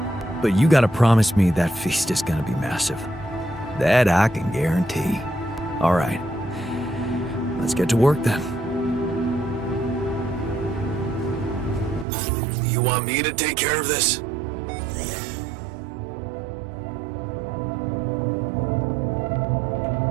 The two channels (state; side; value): drops out; left; at 12.1 s